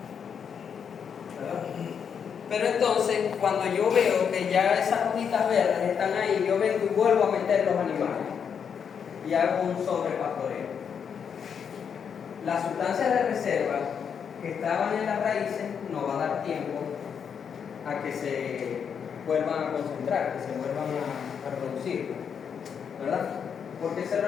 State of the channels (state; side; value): quieter; right; 7.2 dB